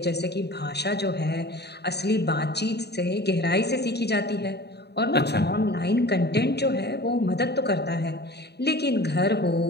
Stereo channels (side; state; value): right; late; 0.48 ms